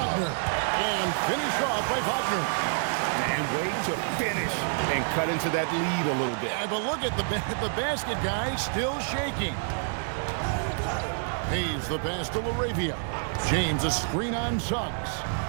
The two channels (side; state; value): left; silent; digital silence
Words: And finished off by Wagner. And wait to finish and cut into that lead a little bit. Yeah, but look at the basket guy still shaking. Hayes the pass to Laravia. James a screen on Suggs.